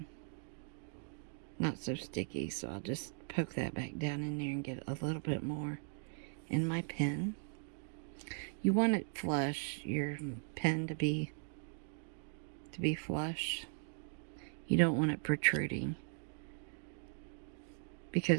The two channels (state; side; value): silent; left; 52 dB below the other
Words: not so sticky, so I'll just poke that back down in there and get a little bit more in my pen. You want it flush, your pen to be flush. You don't want it protruding,